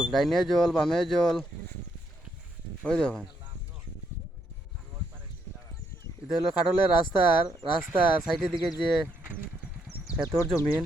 ডাইনে জল বামে জল। ওই দেখুন, এটা হলো খাটলের রাস্তার সাইডের দিকে যে ক্ষেতর জমিন,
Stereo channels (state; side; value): normal; both; correlation 0.75